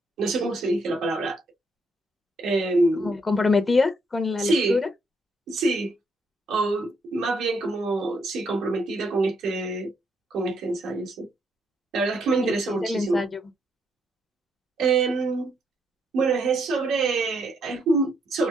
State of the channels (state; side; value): normal; both; correlation 0.74